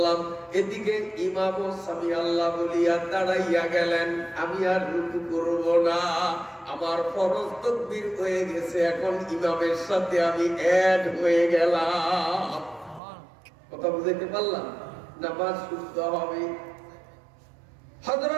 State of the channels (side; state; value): left; drops out; at 13.0 s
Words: এদিকে ইমামও সামি আল্লাহ বলিয়া দাঁড়াইয়া গেলেন, আমি আর রুকু করব না, আমার ফরজ তাকবীর হয়ে গেছে, এখন ইমামের সাথে আমি অ্যাড হয়ে গেলাম। কথা বুঝাইতে পারলাম? নামাজ শুদ্ধ হবে।